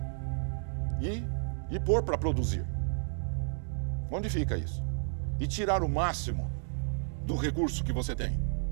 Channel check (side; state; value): left; silent; digital silence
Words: E pôr para produzir. Onde fica isso? E tirar o máximo do recurso que você tem.